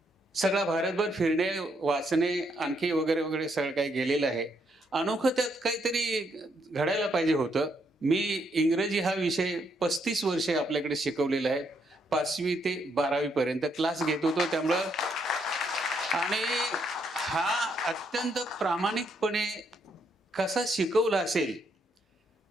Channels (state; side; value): normal; both; correlation 0.75